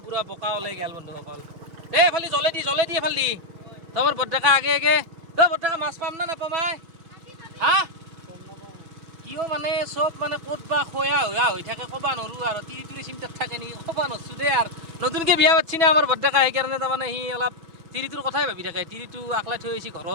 পুৰা বোকা ওলাই গ'ল বন্ধুসকল এই এফালে জ্বলে দি এফালে দি তোমাৰ বৰ্তাকা আগে তই বৰ্তাকা মাছ পাম না নাপাম হা কিয় মানে চব মানে ক'ত বা খয়া হৈ থাকে ক'ব নোৱাৰোঁ আৰু তিৰি চিন্তাত থাকে নেকি ক'ব নোৱাৰছোঁ দেই আৰু নতুনকৈ বিয়া পাতিছি না আমাৰ বৰ্তাকা সেইকাৰণে তাৰমানে সি অলপ তিৰিটোৰ কথাই ভাবি থাকে তিৰিটো আকলাই থৈ আহিছে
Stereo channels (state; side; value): late; left; 6.1 ms